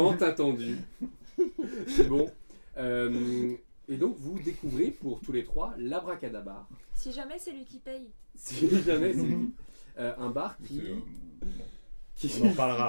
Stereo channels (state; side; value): inverted; both; correlation -1.00